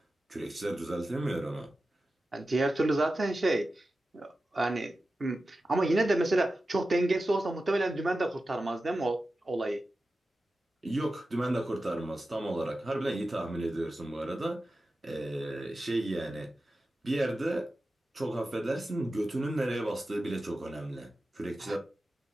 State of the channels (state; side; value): normal; both; correlation 0.93